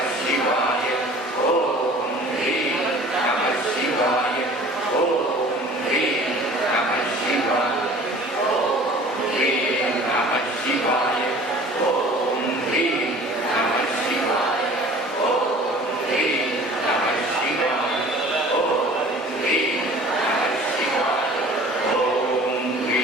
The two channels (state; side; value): normal; both; correlation 0.46